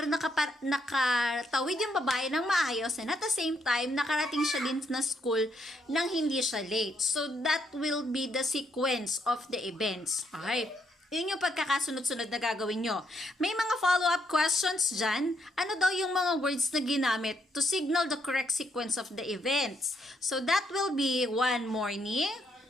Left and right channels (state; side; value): normal; both; correlation 0.75